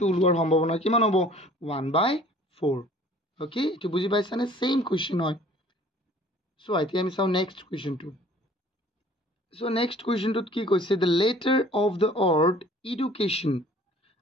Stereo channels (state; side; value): normal; both; correlation 0.52